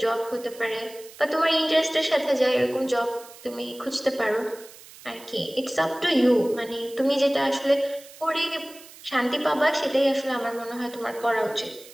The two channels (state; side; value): noise; right; hiss, 20 dB below the sound